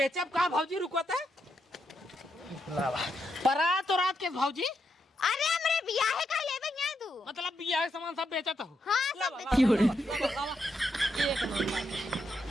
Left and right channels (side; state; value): both; normal; correlation 0.81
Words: का भाजी रुकता है परा तो रात के भाजी। अरे हमरे बियाहे का लेबे नहीं तू? मतलब बियाह के सामान सब बेचता हूँ। हाँ सब एक